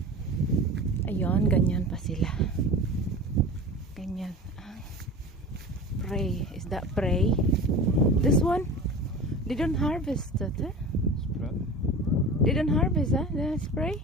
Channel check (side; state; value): both; normal; correlation 0.34